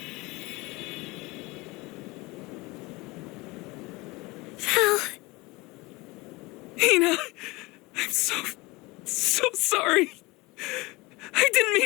Val. Hina, I'm so sorry. I didn't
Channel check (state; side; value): quieter; right; 23.0 dB